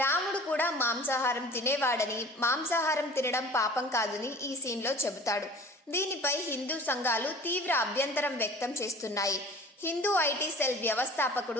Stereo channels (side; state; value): both; normal; correlation 0.44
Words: రాముడు కూడా మాంసాహారం తినేవాడని, మాంసాహారం తినడం పాపం కాదని ఈ సీన్లో చెబుతాడు. దీనిపై హిందూ సంఘాలు తీవ్ర అభ్యంతరం వ్యక్తం చేస్తున్నాయి. హిందూ ఐటీ సెల్